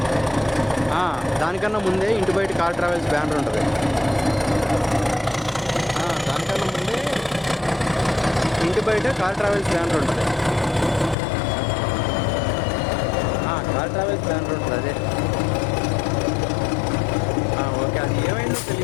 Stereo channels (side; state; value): right; drops out; at 11.2 s